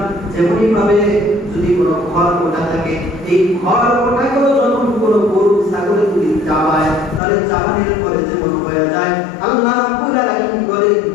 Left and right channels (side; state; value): right; drops out; at 7.2 s